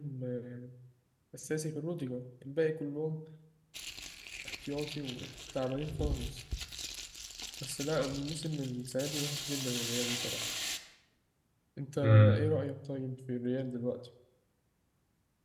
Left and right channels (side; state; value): both; identical; correlation 1.00